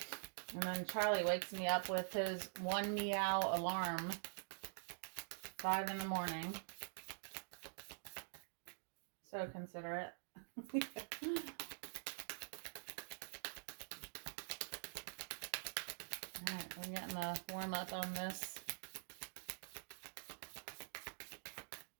then Charlie wakes me up with his 1 meow alarm. 5 in the morning. So considerate. Alright, we're getting a warm up on this.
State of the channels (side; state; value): left; silent; digital silence